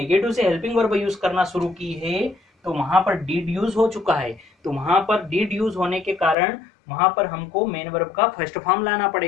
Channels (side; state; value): right; drops out; at 6.4 s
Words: से हेल्पिंग वर्ब यूज करना शुरू की है, तो वहां पर डीड यूज हो चुका है। तो वहां पर डीड यूज होने के कारण वहां पर हमको मेन वर्ब का फर्स्ट फॉर्म लाना